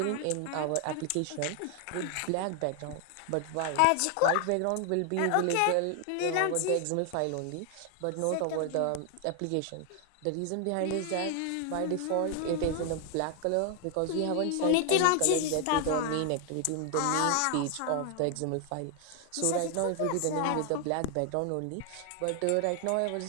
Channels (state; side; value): different; both; correlation 0.00